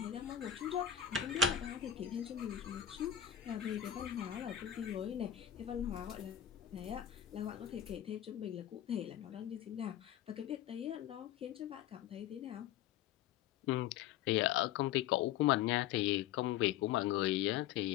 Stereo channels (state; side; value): quieter; right; 10.1 dB